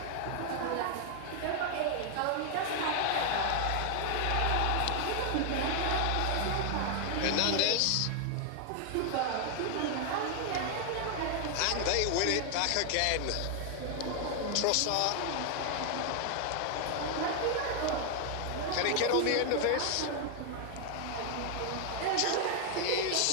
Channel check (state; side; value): different; both; correlation 0.00